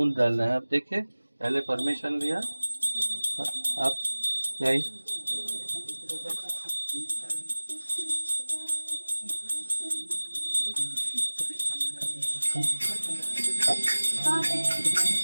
डालना है। अब देखिए, पहले परमिशन लिया, आप जाइए।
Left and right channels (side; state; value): both; inverted; correlation -1.00